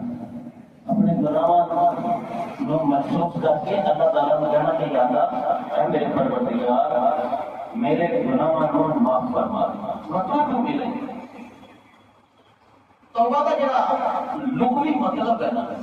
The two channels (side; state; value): both; identical; correlation 1.00